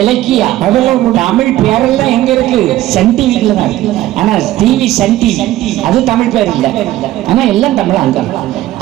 அதெல்லாம் தமிழ் பேரெல்லாம் எங்க இருக்கு? சன் டிவில தான் இருக்கு. ஆனா டிவி சன் டிவி அது தமிழ் பேர் இல்ல. ஆனா எல்லாம் தமிழ் அங்க.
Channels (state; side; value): quieter; left; 15.0 dB